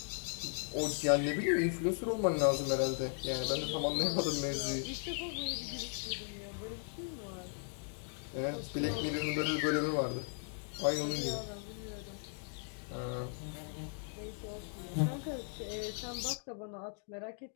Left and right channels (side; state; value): right; silent; 53 dB below the other